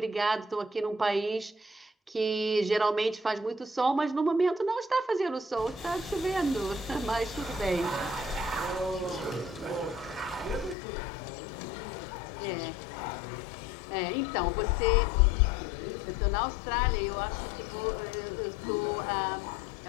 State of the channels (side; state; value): right; drops out; at 10.8 s